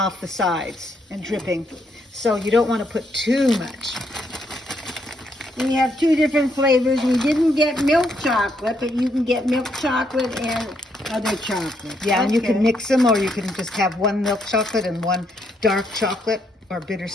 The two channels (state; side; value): normal; both; correlation 0.75